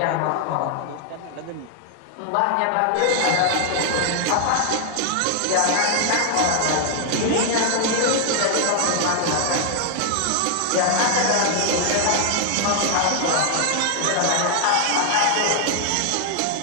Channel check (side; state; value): both; different; correlation 0.00